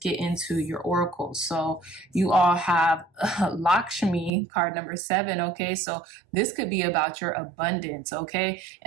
into your oracles. So you all have Lakshmi, card number 7. Okay, so this could be about your abundance. Okay,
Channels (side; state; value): left; drops out; at 4.3 s